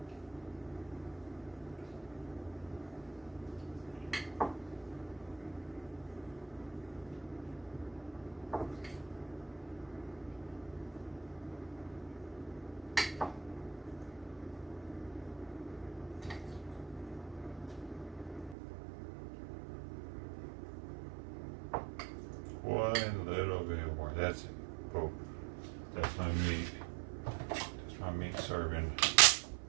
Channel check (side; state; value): left; drops out; at 18.6 s